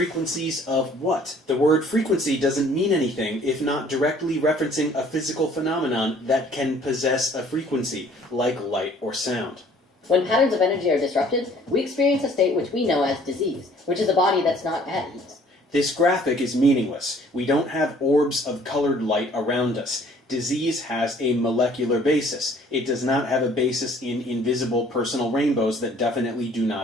of what? The word frequency doesn't mean anything if not directly referencing a physical phenomenon that can possess a frequency, like light or sound. When patterns of energy are disrupted, we experience a state which we know as disease, which is a body that's not at ease. This graphic is meaningless. We don't have orbs of colored light around us. Disease has a molecular basis. It does not have a basis in invisible personal rainbows that definitely do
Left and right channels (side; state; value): both; normal; correlation 0.56